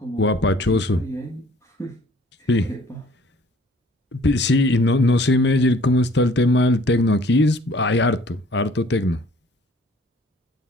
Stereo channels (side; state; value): both; normal; correlation 0.55